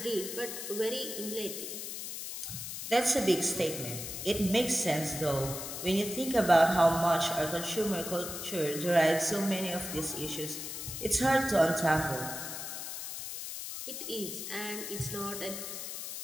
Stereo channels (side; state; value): left; noise; hiss, 7 dB below the sound